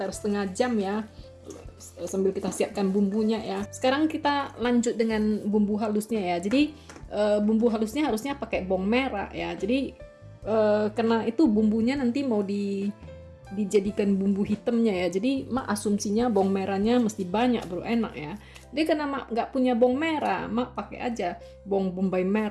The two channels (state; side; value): identical; both; correlation 1.00